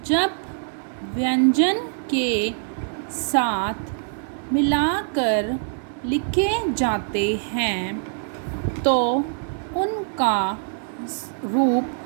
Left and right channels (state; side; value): silent; left; 55 dB below the other